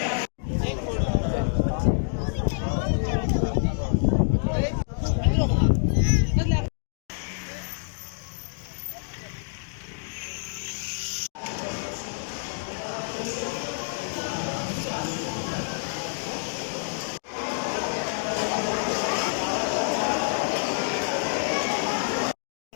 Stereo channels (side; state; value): right; silent; digital silence